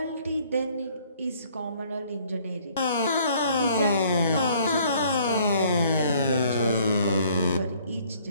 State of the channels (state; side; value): inverted; both; correlation -0.61